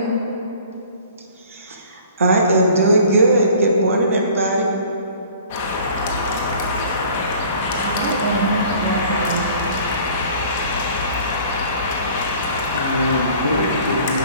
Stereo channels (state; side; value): inverted; both; correlation -0.50